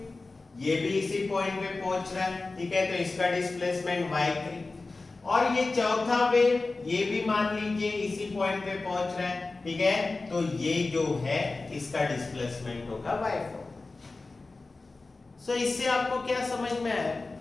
ये भी इसी पॉइंट पे पहुंच रहा है, ठीक है, तो इसका डिस्प्लेसमेंट y3। और ये चौथा वेव, ये भी मान लीजिए इसी पॉइंट पे पहुंच रहा है, ठीक है, तो ये जो है इसका डिस्प्लेसमेंट होगा y4। सो इससे आपको क्या समझ में आया?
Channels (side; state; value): right; quieter; 3.5 dB